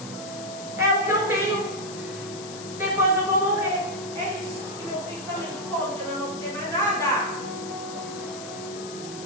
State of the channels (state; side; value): noise; left; hiss, 13 dB below the sound